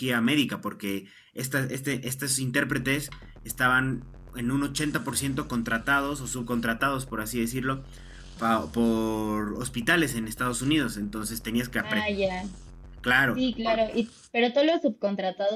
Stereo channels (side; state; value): both; identical; correlation 1.00